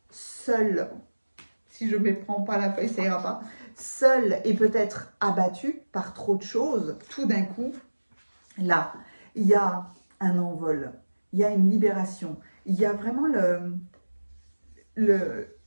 seul, si je ne méprends pas la feuille, ça ira pas, seul et peut-être abattu par trop de choses, tout d'un coup, là, il y a un envol, il y a une libération, il y a vraiment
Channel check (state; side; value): inverted; both; correlation -1.00